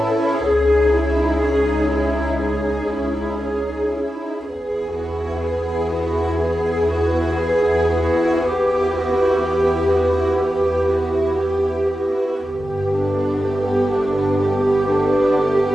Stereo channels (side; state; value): both; normal; correlation 0.91